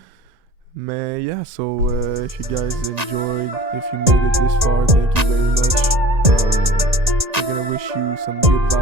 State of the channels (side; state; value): left; late; 1.9 ms